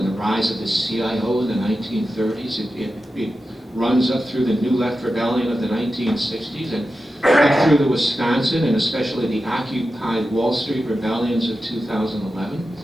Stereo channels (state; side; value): normal; both; correlation 0.92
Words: the rise of the CIO in the 1930s. It runs up through the New Left Rebellion of the 1960s, and up through the Wisconsin, and especially the Occupy Wall Street rebellions of 2011.